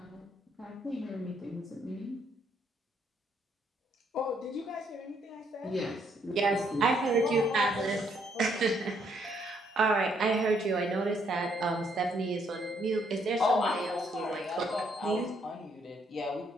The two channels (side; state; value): both; normal; correlation 0.70